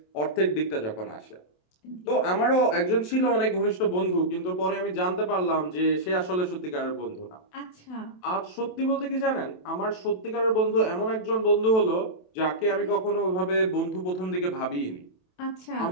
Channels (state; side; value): late; right; 27 ms